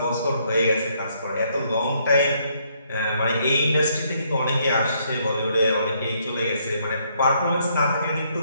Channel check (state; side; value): inverted; both; correlation -0.70